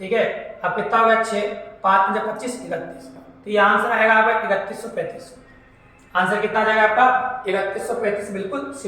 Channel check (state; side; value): identical; both; correlation 1.00